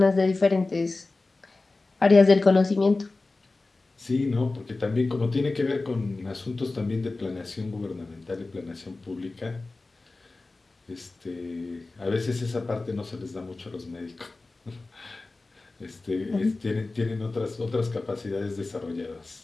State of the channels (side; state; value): right; quieter; 3.4 dB